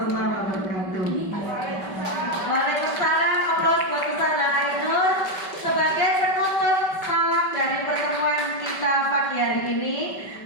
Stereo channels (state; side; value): late; right; 5.2 ms